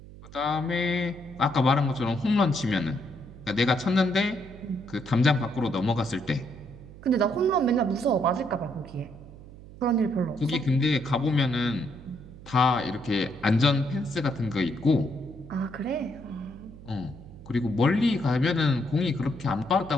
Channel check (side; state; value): right; noise; hum, 17 dB below the sound